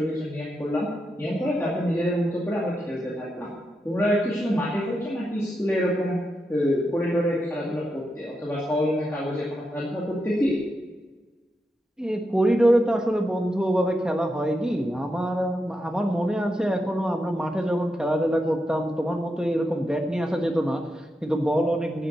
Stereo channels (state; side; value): normal; both; correlation 0.85